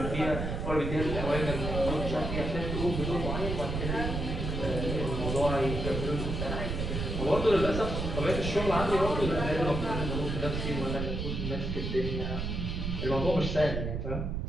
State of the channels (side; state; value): right; noise; rumble, 3 dB below the sound